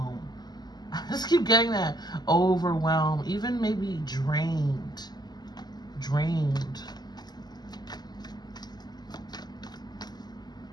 I just keep getting that. Overwhelm. Even maybe drained.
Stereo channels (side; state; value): right; late; 0.20 ms